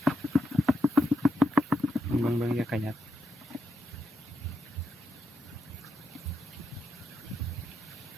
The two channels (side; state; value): both; normal; correlation 0.84